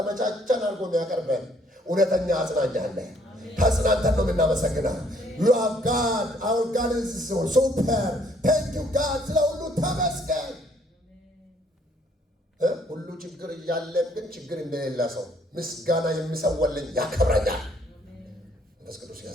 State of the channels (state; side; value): normal; both; correlation 0.64